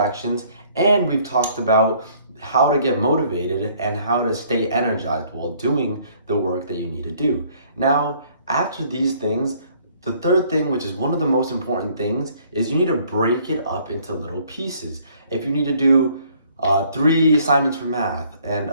and we've talked about how to get motivated and how to stay energized while doing the work that you need to do. Now, after these things, the third thing, which is one of the most important things, is you need to break it up into little pieces. If you need to do 3 assignments for math, and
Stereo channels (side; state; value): both; inverted; correlation -0.61